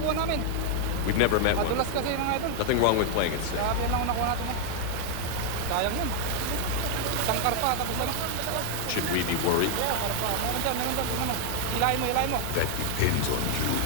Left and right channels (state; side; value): different; both; correlation 0.00